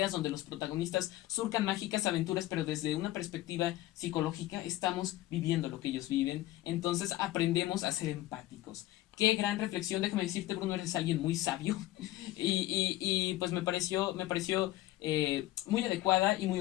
donde los protagonistas surcan mágicas aventuras, pero desde una perspectiva psicológica, estamos viviendo lo que ellos viven, entonces aprendemos a ser empáticos. Qué gran reflexión, déjame decirte, Bruno, eres alguien muy sabio y pues me pareció muy adecuada y muy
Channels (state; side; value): quieter; right; 16.2 dB